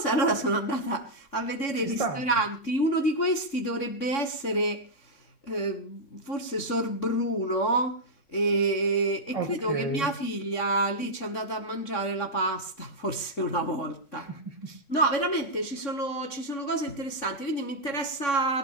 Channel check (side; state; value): right; late; 3.6 ms